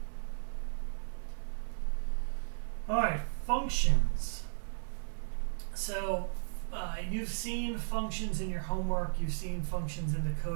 All right, functions. So you've seen functions in your homework. You've seen functions in the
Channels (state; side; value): silent; left; 54 dB below the other